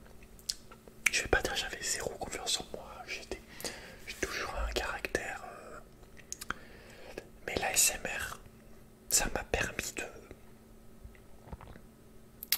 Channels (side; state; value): both; identical; correlation 1.00